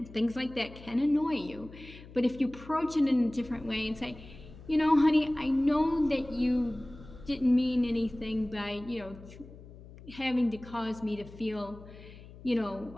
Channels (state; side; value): noise; left; hum, 18 dB below the sound